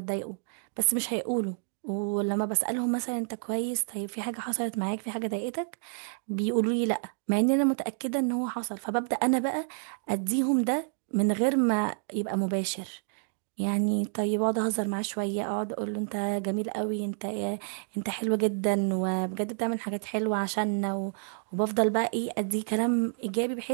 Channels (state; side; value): silent; left; 58 dB below the other